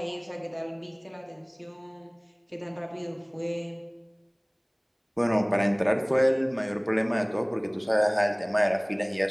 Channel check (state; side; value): identical; both; correlation 1.00